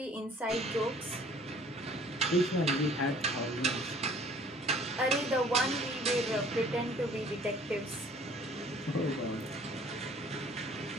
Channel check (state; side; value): normal; both; correlation 0.54